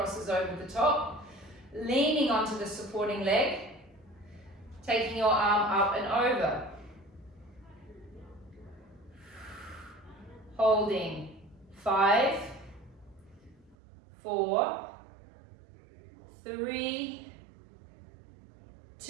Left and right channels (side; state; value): left; drops out; at 13.8 s